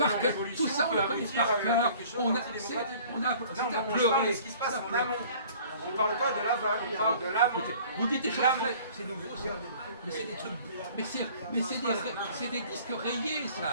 en cœur, révolution tout ça on peut le connaît aboutir par à cœur, quelque chose on a d'antidémocratique. on a On pleuré, parle de ce qui se passe ça en pleure. amont. On parle pas de l'aval, on parle de l'amont. Écoutez, vous dites des choses L'amont. très... C'est nouveau ça. Mais c'est des trucs... c'est des disques rayés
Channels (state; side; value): inverted; both; correlation -0.50